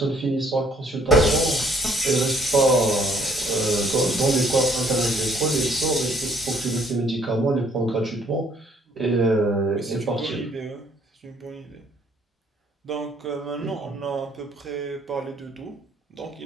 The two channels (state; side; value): normal; both; correlation 0.63